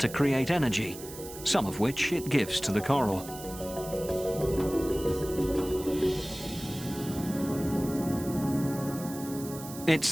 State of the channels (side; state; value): right; noise; hiss, 13 dB below the sound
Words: create energy, some of which it gives to the coral.